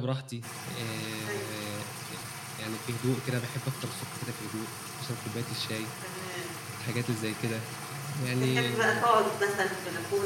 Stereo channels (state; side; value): identical; both; correlation 1.00